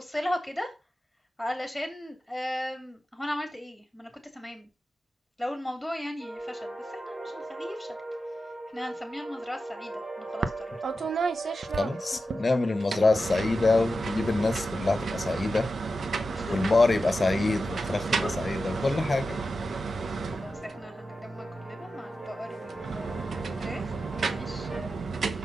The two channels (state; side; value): normal; both; correlation 0.91